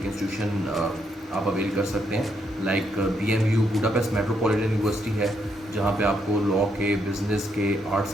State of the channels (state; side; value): normal; both; correlation 0.77